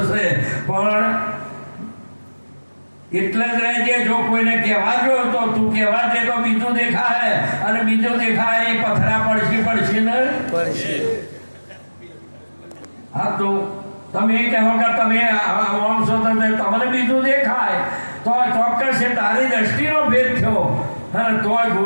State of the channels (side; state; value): both; inverted; correlation -1.00